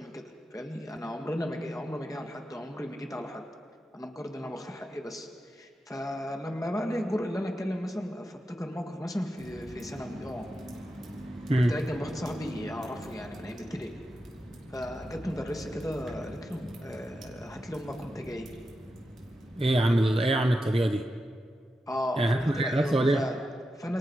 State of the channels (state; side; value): normal; both; correlation 0.89